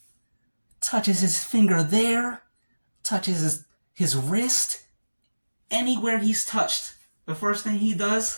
touches his finger there, touches his wrist. Anywhere he's touched, the first thing he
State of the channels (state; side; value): inverted; both; correlation -1.00